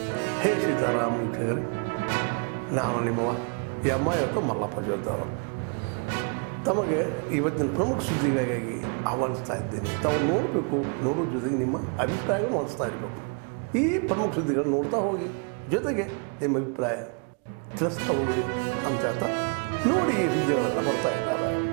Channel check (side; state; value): left; quieter; 37.8 dB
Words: ಹೇ ಸೀತಾರಾಮ್ ವೀಕ್ಷಕರೇ, ನಾನು ನಿಮ್ಮವ ಇವತ್ತು ಮಲ್ಲಪ್ಪ ಜೋದ್ದವರು ತಮಗೆ ಇವತ್ತಿನ ಪ್ರಮುಖ ಸುದ್ದಿಗಳಿಗಾಗಿ ಆಹ್ವಾನಿಸ್ತಾ ಇದ್ದೇನೆ. ತಾವು ನೋಡಬೇಕು, ನೋಡೋ ಜೊತೆಗೆ ನಿಮ್ಮ ಅಭಿಪ್ರಾಯ ಮಾಡಿಸ್ತಾ ಇರಬೇಕು. ಈ ಪ್ರಮುಖ ಸುದ್ದಿಗಳು ನೋಡ್ತಾ ಹೋಗಿ, ಜೊತೆಗೆ ನಿಮ್ಮ ಅಭಿಪ್ರಾಯ ತಿಳಿಸ್ತಾ ಹೋಗ್ರಿ ಅಂತ ಹೇಳ್ತಾ ನೋಡಿ ಈ ಸುದ್ದಿಗಳೆಲ್ಲ ಬರ್ತಾ ಇದ್ದಾರೆ.